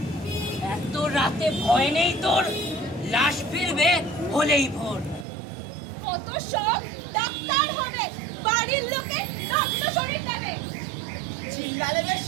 এত রাতে ভয় নেই তোর, লাশ ফিরবে হলেই ভোর। কত শখ ডাক্তার হবে, বাড়ির লোকে রক্ত শরীর নেবে। চিল্লালে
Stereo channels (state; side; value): drops out; left; at 5.2 s